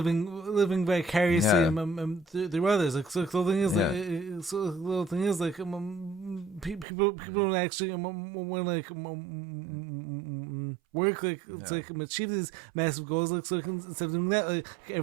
vicariously through others. Like so, the thing is, people don't actually want to like work to like achieve these massive goals. Like so, instead of doing that, like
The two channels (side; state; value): left; drops out; at 6.9 s